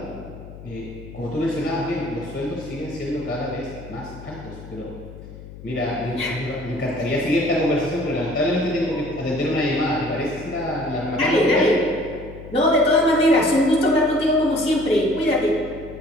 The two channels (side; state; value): left; noise; hum, 15 dB below the sound